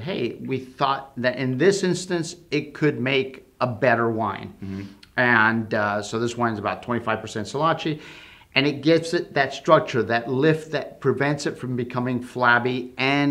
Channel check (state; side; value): identical; both; correlation 1.00